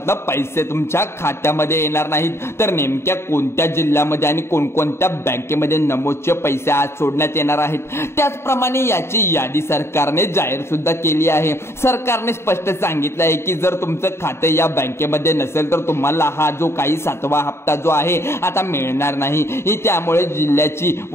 पैसे तुमच्या खात्यामध्ये येणार नाहीत। तर नेमक्या कोणत्या जिल्ह्यामध्ये आणि कोणकोणत्या बँकेमध्ये नमोचे पैसे आज सोडण्यात येणार आहेत त्याचप्रमाणे याची यादी सरकारने जाहीर सुद्धा केली आहे। सरकारने स्पष्ट सांगितलं आहे की जर तुमचं खातं या बँकेमध्ये नसेल तर तुम्हाला हा जो काही 7वा हप्ता जो आहे आता मिळणार नाही। त्यामुळे जिल्ह्याची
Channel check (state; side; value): late; right; 0.12 ms